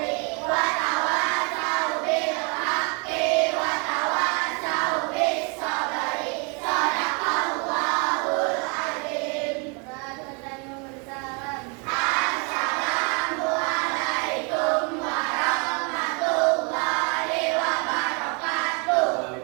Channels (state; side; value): quieter; left; 34.4 dB